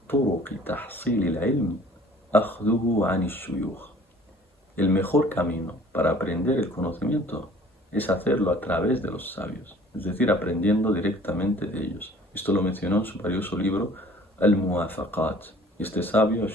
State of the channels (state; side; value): normal; both; correlation 0.51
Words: طرق تحصيل العلم أخذه عن الشيوخ. El mejor camino para aprender el conocimiento es hacerlo a través de los sabios, es decir, aprendiendo directamente de ellos. Esto lo mencionó en su valioso libro Al-Muwafaqat. Este sabio,